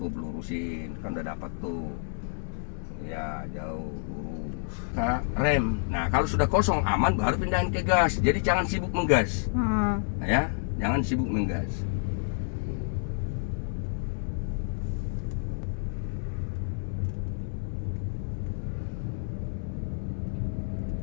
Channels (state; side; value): silent; right; digital silence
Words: lurusin, kan udah dapat tuh. Ya, jauh lurus. Nah, rem. Nah, kalau sudah kosong aman baru pindahin ke gas. Jadi jangan sibuk menggas. Nah, ya, jangan sibuk menggas.